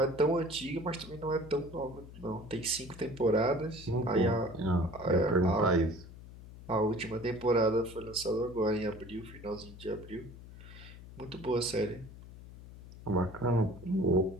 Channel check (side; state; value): left; noise; hum, 16 dB below the sound